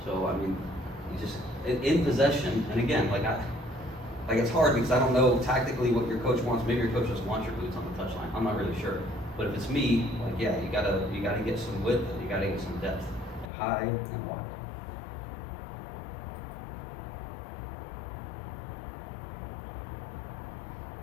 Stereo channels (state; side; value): drops out; right; at 13.5 s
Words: So I mean, you just in possession, and again, like it's hard because I don't know tactically what your coach wants. Maybe your coach doesn't want your boots on the touchline. I'm not really sure. But if it's me, like yeah, you gotta get some width, and you gotta get some depth, high and wide.